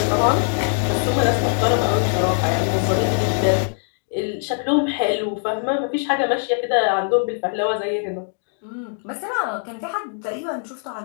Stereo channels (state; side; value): silent; right; digital silence